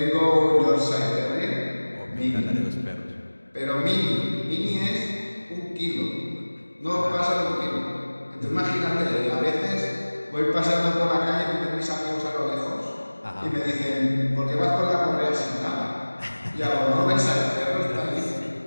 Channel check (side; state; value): both; inverted; correlation -1.00